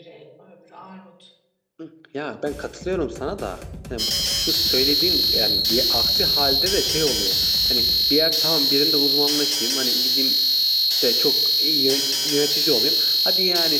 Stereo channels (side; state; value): both; identical; correlation 1.00